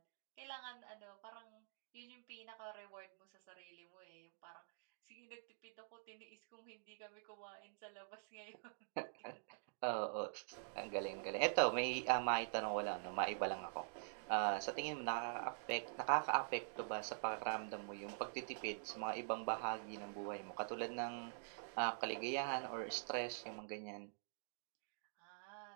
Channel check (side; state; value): left; silent; digital silence